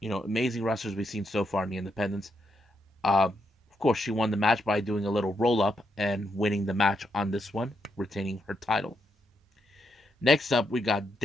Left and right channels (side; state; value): both; normal; correlation 0.80